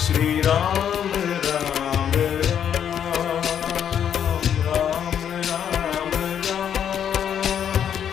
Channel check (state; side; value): quieter; right; 8.9 dB